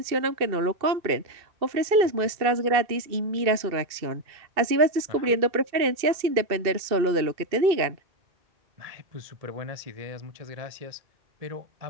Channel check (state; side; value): late; left; 2.7 ms